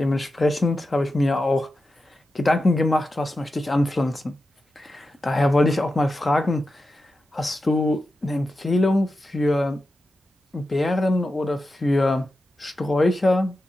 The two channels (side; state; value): both; normal; correlation 0.91